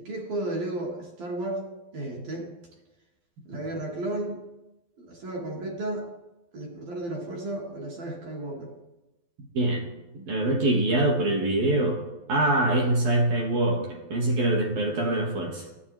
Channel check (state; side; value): late; left; 12 ms